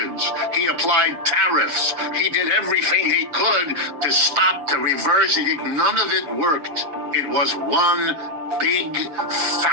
He applied tariffs. He did everything he could to stop, to reverse. None of it worked. It was one big,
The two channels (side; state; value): left; late; 7.3 ms